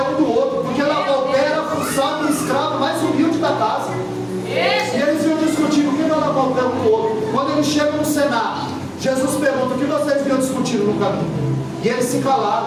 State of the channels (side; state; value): both; identical; correlation 1.00